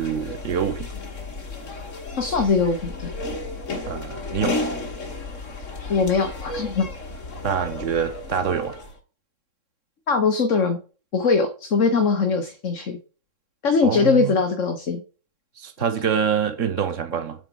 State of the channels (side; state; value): right; late; 3.6 ms